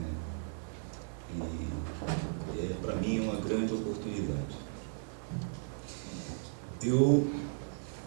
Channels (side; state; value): left; silent; 54 dB below the other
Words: e para mim é uma grande oportunidade. Eu